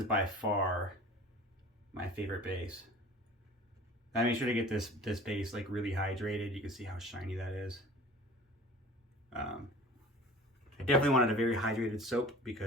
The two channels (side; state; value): both; normal; correlation 0.43